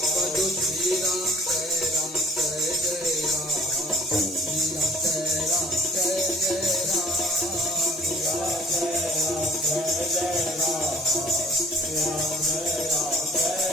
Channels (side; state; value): both; normal; correlation 0.54